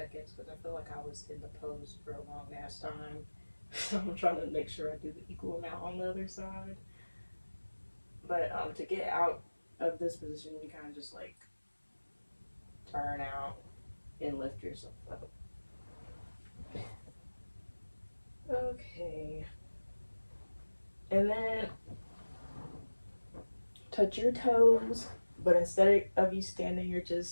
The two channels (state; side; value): inverted; both; correlation -1.00